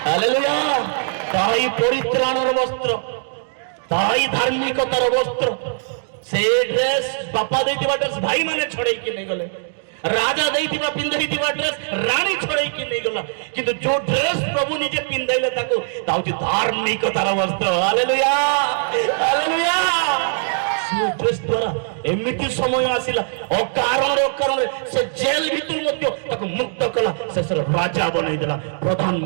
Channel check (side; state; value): left; silent; digital silence